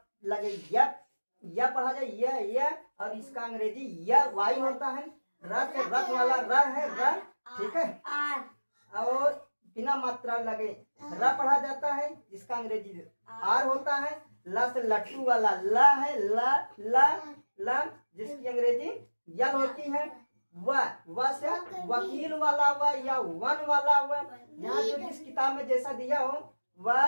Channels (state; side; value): inverted; both; correlation -1.00